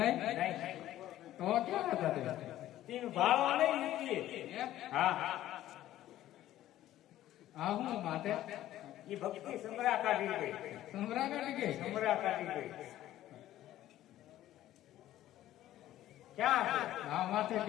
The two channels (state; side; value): quieter; right; 13.6 dB